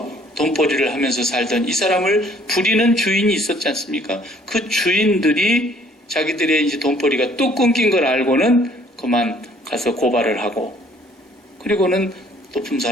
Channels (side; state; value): both; normal; correlation 0.59